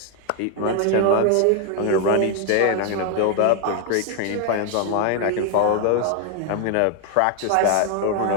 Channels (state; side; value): different; both; correlation 0.00